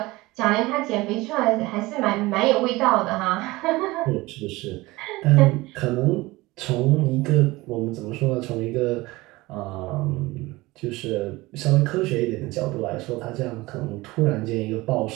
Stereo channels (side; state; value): left; quieter; 20.7 dB